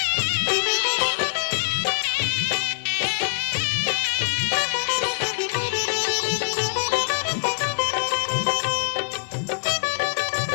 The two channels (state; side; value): silent; right; 63 dB below the other